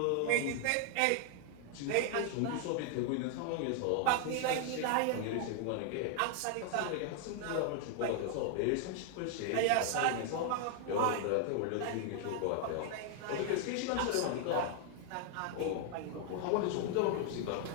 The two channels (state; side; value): different; both; correlation 0.00